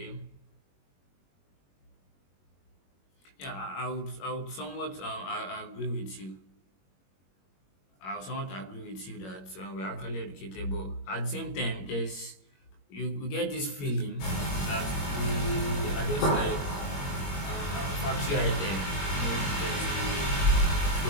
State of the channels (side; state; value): right; late; 21 ms